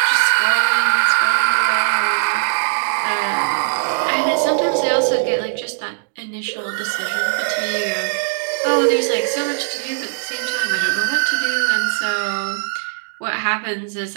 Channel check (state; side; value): silent; left; digital silence